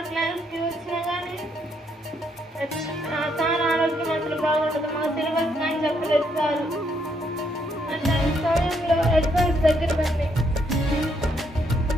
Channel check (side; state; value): both; normal; correlation 0.73